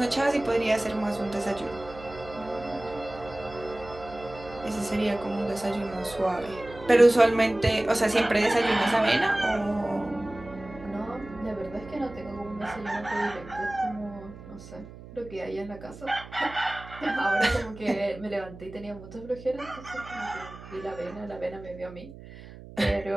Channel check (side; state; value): right; noise; hum, 16 dB below the sound